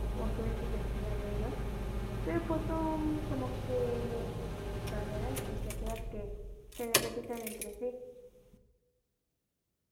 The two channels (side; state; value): both; identical; correlation 1.00